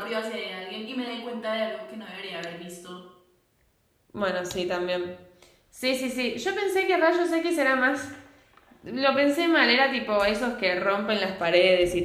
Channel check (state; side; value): identical; both; correlation 1.00